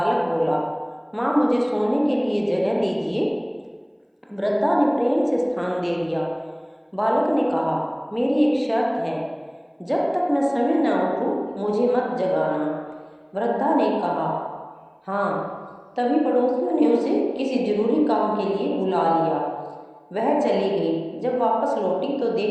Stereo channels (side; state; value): both; identical; correlation 1.00